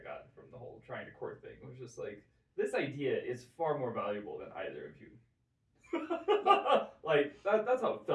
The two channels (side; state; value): both; identical; correlation 1.00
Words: got from the whole trying to court thing. It was just like, this idea is far more valuable than either of you. Like that's how it